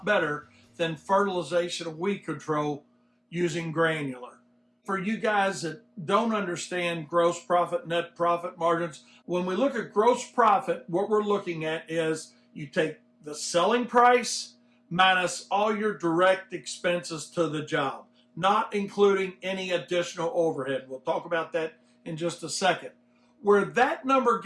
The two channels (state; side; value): identical; both; correlation 1.00